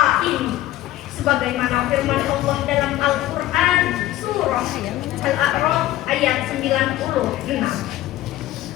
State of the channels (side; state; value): right; quieter; 14.9 dB